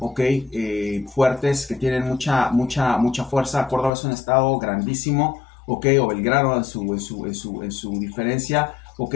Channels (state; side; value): drops out; right; at 3.9 s